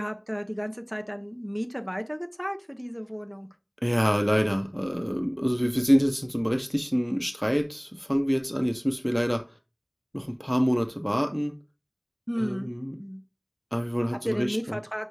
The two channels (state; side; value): identical; both; correlation 1.00